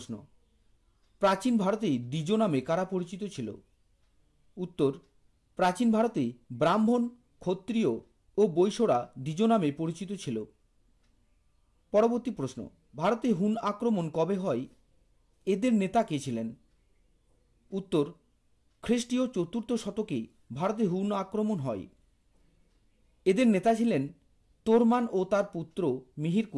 প্রাচীন ভারতে দ্বিজ নামে কারা পরিচিত ছিল? উত্তর, প্রাচীন ভারতে ব্রাহ্মণ, ক্ষত্রিয় ও বৈশ্যরা দ্বিজ নামে পরিচিত ছিল। পরবর্তী প্রশ্ন, ভারতে হুন আক্রমণ কবে হয়? এদের নেতা কে ছিলেন? উত্তর, খ্রিস্টীয় 4র্থ শতকে ভারতে হুন আক্রমণ হয়। এদের নেতা ছিলেন তোরমান ও তার পুত্র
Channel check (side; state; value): both; identical; correlation 1.00